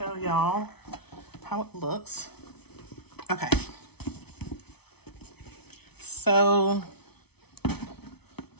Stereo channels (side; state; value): right; late; 0.98 ms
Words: y'all how it looks. Okay. So